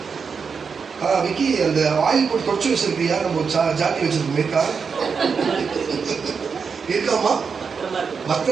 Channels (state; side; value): quieter; left; 5.7 dB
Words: விக்கி, அந்த ஆயில் போட்டு தொடச்சு வச்சிருக்கியா? நம்ம ஜாட்டி வச்சிருக்கோமேக்கா இருக்காமா?